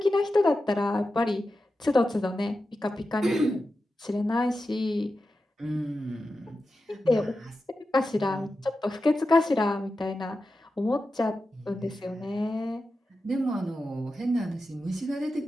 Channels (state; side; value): normal; both; correlation 0.91